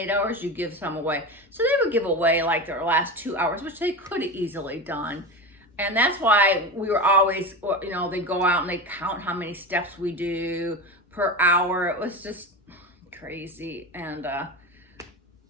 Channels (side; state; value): both; normal; correlation 0.23